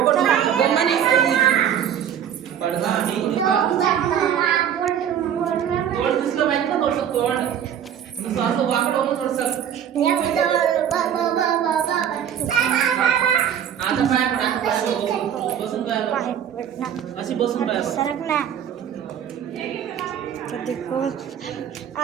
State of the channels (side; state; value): left; quieter; 9.2 dB